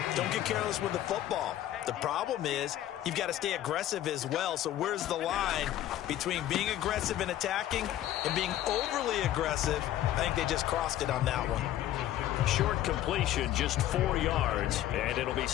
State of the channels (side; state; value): right; quieter; 12.9 dB